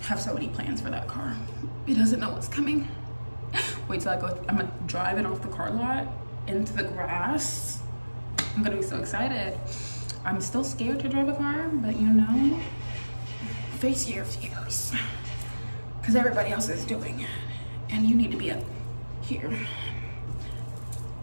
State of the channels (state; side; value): inverted; both; correlation -1.00